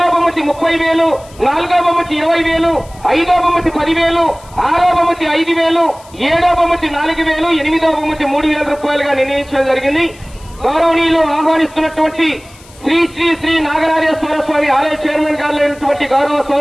బహుమతి 30,000, నాలుగో బహుమతి 20,000, ఐదో బహుమతి 10,000, ఆరో బహుమతి 5,000, ఏడో బహుమతి 4,000, ఎనిమిదో బహుమతి 3,000 రూపాయలుగా నిర్ణయించడం జరిగింది. గౌరవనీయులు ఆహ్వానిస్తున్నటువంటి శ్రీ శ్రీ శ్రీ నాగరాజేశ్వర స్వామి ఆలయ చైర్మన్ గారైనటువంటి గౌరవ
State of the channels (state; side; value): noise; left; hiss, 24 dB below the sound